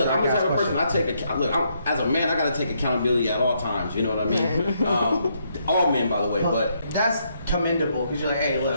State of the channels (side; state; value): both; inverted; correlation -0.75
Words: type of person. As a man, I gotta take accountability at all times. You know what I mean? All men, by the way, but that's commendable because you're like, hey,